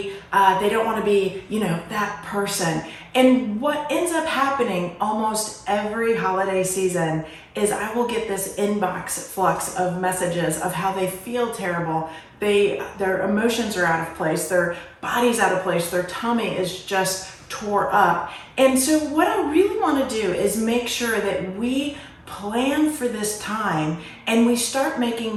They don't want to be that person. And what ends up happening almost every holiday season is I will get this inbox flux of messages of how they feel terrible. Their emotions are out of place, their body's out of place, their tummy is just tore up. And so what I really want to do is make sure that we plan for this time and we start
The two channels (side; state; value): both; identical; correlation 1.00